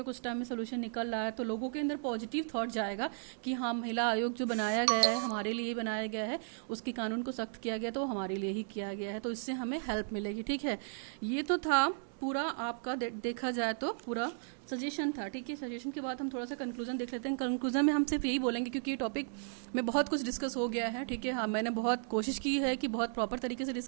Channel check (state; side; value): silent; left; digital silence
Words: कुछ टाइम में सोल्यूशन निकल रहा है, तो लोगों के अंदर पॉजिटिव थॉट जाएगा कि हाँ, महिला आयोग जो बनाया गया है हमारे लिए बनाया गया है, उसके कानून को सख्त किया गया तो हमारे लिए ही किया गया है, तो इससे हमें हेल्प मिलेगी, ठीक है। ये तो था पूरा आपका देखा जाए तो पूरा सजेशन था, ठीक है। सजेशन के बाद हम थोड़ा सा कंक्लूजन देख लेते हैं। कंक्लूजन में हम सिर्फ यही बोलेंगे, क्योंकि ये टॉपिक में बहुत कुछ डिस्कस हो गया है, ठीक है। हाँ, मैंने बहुत कोशिश की है कि बहुत प्रॉपर तरीके से